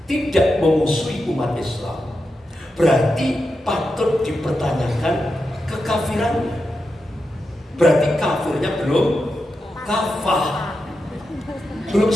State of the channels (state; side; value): normal; both; correlation 0.88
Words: tidak memusuhi umat Islam, berarti patut dipertanyakan kekafirannya. Berarti kafirnya belum kafah, belum